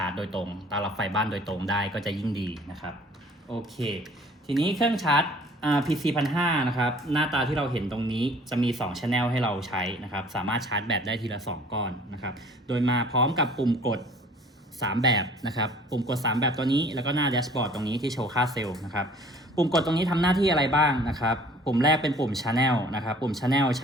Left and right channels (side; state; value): both; normal; correlation 0.52